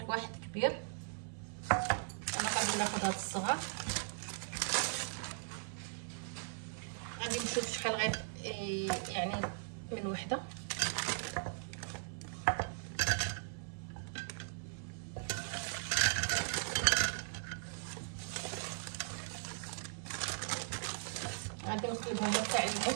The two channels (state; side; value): silent; left; 52 dB below the other